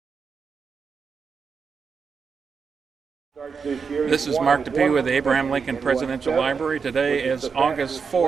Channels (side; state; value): left; quieter; 5.6 dB